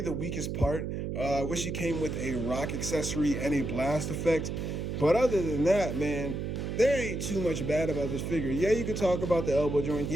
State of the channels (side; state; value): right; noise; hum, 3 dB below the sound